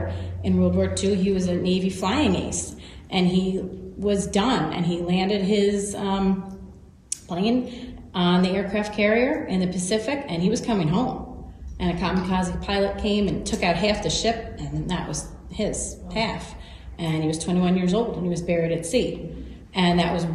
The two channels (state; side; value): identical; both; correlation 1.00